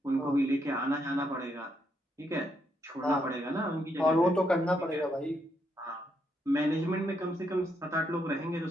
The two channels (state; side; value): normal; both; correlation 0.77